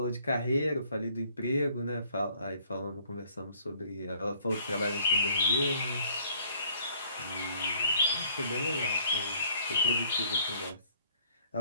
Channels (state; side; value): inverted; both; correlation -0.62